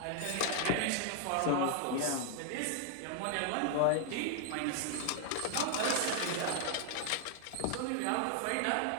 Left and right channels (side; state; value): both; different; correlation 0.00